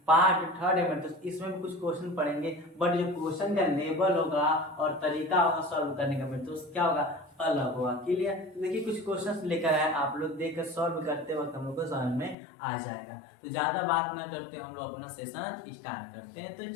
पार्ट 3 है मेरे दोस्त, इसमें भी कुछ क्वेश्चन पढ़ेंगे, बट जो क्वेश्चन का लेवल होगा और तरीका होगा सॉल्व करने का मेरे दोस्त क्या होगा, अलग होगा। क्लियर। तो देखिए कुछ क्वेश्चंस लेकर आए, आप लोग देखकर सॉल्व करते वक्त हम लोग को समझ में आ जाएगा। तो ज्यादा बात ना करते हम लोग अपना सेशन स्टार्ट करते हैं। तो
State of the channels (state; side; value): drops out; right; at 12.4 s